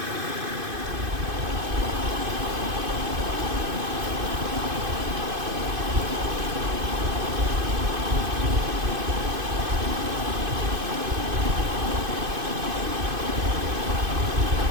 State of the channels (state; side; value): late; left; 2.5 ms